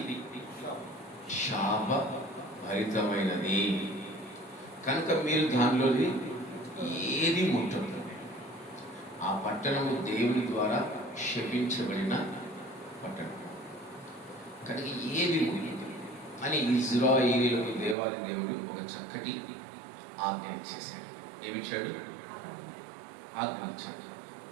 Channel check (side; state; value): left; drops out; at 17.9 s